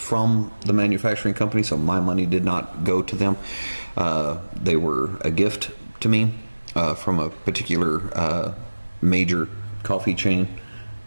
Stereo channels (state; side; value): inverted; both; correlation -1.00